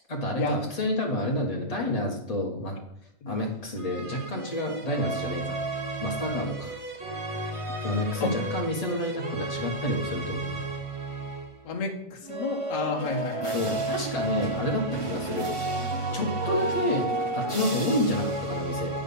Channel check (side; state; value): right; late; 1.5 ms